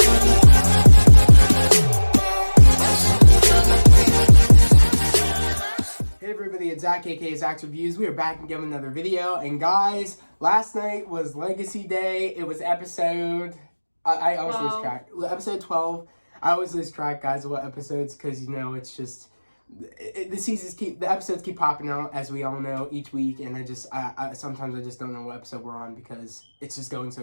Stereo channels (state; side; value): inverted; both; correlation -1.00